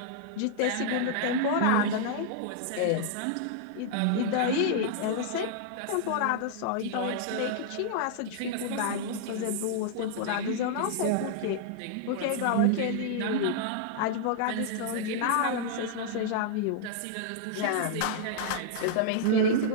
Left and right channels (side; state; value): both; different; correlation -0.01